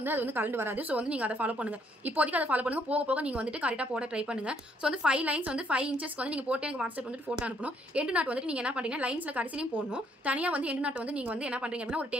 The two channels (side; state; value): both; normal; correlation 0.69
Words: அது வந்து கலந்து வராது. ஸோ வந்து நீங்கள் அதை ஃபாலோ பண்ணுங்கள். இப்போதைக்கு அதை ஃபாலோ பண்ணுங்கள். போக போக நீங்கள் வந்துட்டு கரெக்டாக போட ட்ரை பண்ணுங்கள். ஸோ வந்து 5 லைன்ஸ் வந்து 5 இன்ச்சஸ்க்கு வந்து நீங்கள் போட்டு எனக்கு வாட்ஸ்அப் வந்துட்டு ஃபோட்டோ அனுப்பணும். எண்டு நாட் வந்துட்டு நீங்கள் என்ன பண்ணுறீங்க, லைன்ஸில் கடைசிலையும் போடணும். தனியாக வந்து எண்டு நாட் வந்து நீங்கள் வந்து என்ன பண்ணுறீங்க அப்படின்னா ஒரு